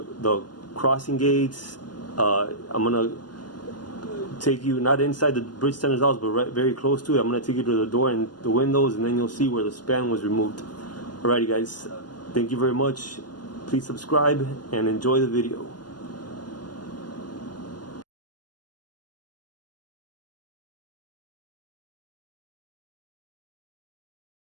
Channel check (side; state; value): right; late; 0.70 ms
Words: crossing gates. I'm going to take you not inside the bridge tender's house, but very close to it. I'm going to take you to the door and the windows, and then you'll see where the span was removed. Alrighty guys, thank you very much. Please subscribe and enjoy the video.